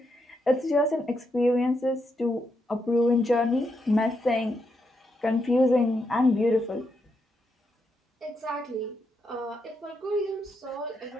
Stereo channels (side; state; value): both; normal; correlation 0.81